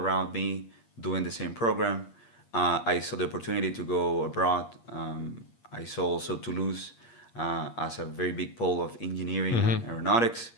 me doing the same program. I saw the opportunity to go abroad. I saw also Toulouse as a very big pole of engineering and aeronautics.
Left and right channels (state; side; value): late; right; 8.5 ms